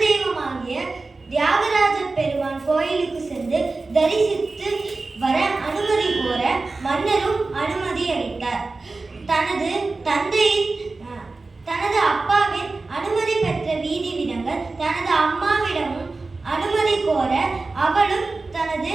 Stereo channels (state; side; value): quieter; left; 3.6 dB